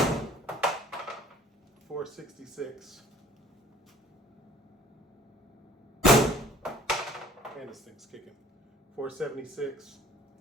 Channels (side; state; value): both; normal; correlation 0.52